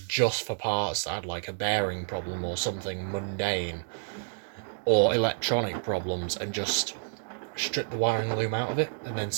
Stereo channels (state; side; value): silent; left; digital silence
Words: just for parts that had, like, a bearing problem or something mundane, or electronic problems, and just strip the wiring loom out of it and then